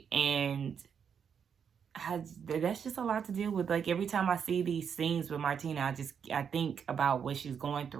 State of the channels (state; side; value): quieter; left; 7.3 dB